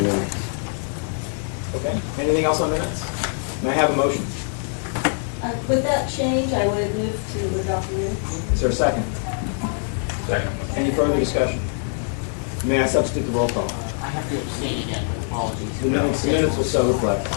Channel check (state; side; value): silent; right; 58 dB below the other